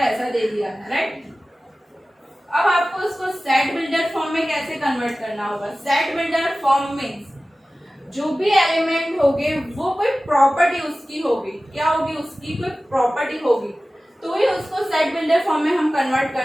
दे दिया है, राइट। अब आपको उसको सेट बिल्डर फॉर्म में कैसे कन्वर्ट करना होगा? सेट बिल्डर फॉर्म मीन्स जो भी एलिमेंट होंगे वो कोई प्रॉपर्टी उसकी होगी। क्या होगी? उसकी कोई प्रॉपर्टी होगी, तो ही उसको सेट बिल्डर फॉर्म में हम कन्वर्ट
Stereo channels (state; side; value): normal; both; correlation 0.96